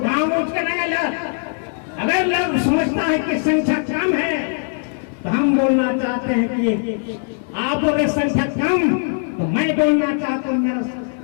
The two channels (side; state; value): right; silent; 66 dB below the other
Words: उठ कर आएगा। अगर लोग समझता है कि संख्या कम है, तो हम बोलना चाहते हैं कि आप बोले संख्या कम, तो मैं बोलना चाहता हूँ मेरा